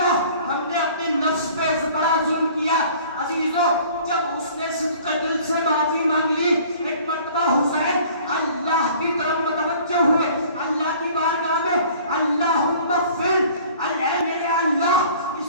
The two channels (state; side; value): inverted; both; correlation -0.50